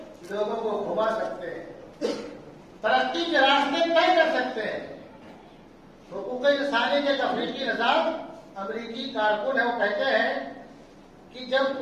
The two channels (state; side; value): identical; both; correlation 1.00